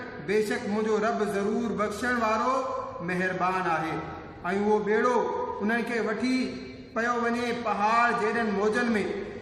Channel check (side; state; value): both; identical; correlation 1.00